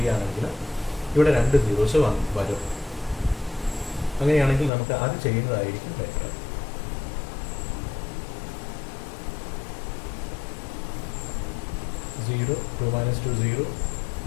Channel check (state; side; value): drops out; right; at 4.7 s